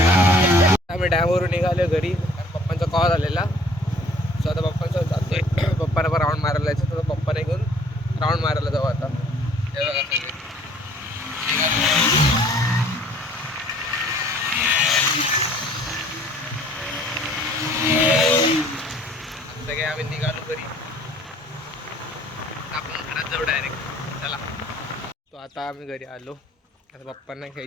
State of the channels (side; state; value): both; normal; correlation 0.56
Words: राऊंड मारायला जाऊ आता. हे बघा सगळे. सगळे आम्ही निघालो घरी. आपण घरात जाऊ डायरेक्ट. चला. तो आता आम्ही घरी आलो. आता पप्पांना